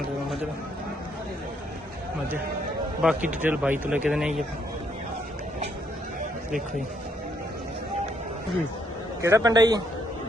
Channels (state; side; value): normal; both; correlation 0.72